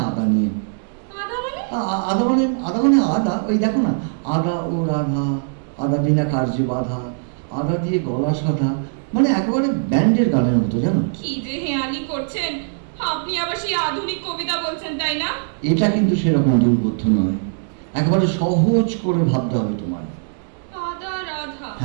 আদা নিয়ে। আদা মানে? আদা, ওই দেখো না, আদা ও রাধা, আদা বিনা কার্যে বাধা, আদা দিয়ে গলা সাধা, মানে একেবারে ব্যান্ডের গানের মতো, জানো? কি যে হেয়ালি করছেন আপনি, আবার সেই আধুনিক কবিতা বলছেন, তাই না? এটা কিন্তু সেরকম দুর্বোধ্য নয়, একেবারে সহজ করে ভাবতে হবে তোমায়। আদা রাধা?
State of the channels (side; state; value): left; silent; digital silence